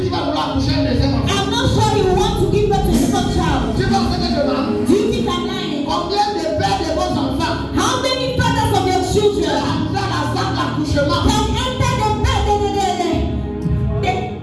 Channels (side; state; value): both; identical; correlation 1.00